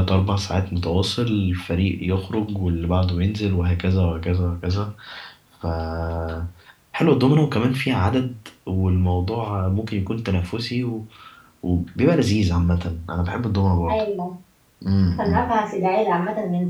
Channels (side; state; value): both; identical; correlation 1.00